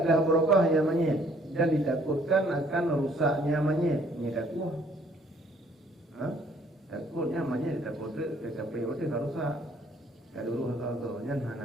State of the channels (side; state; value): both; normal; correlation 0.61